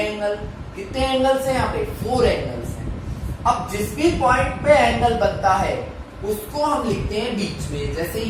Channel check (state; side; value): identical; both; correlation 1.00